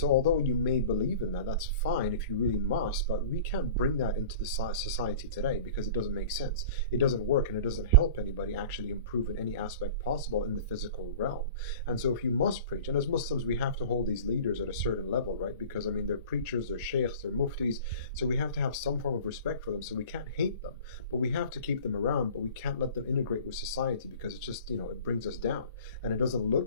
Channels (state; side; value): inverted; both; correlation -0.41